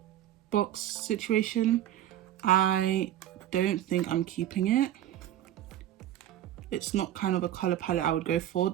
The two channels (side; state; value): left; quieter; 12.0 dB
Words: box situation. I don't think I'm keeping it. It's not kind of a color palette I would go for.